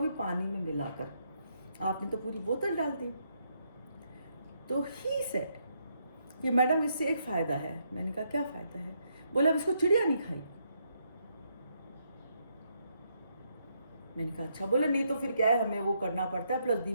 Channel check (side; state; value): both; inverted; correlation -0.76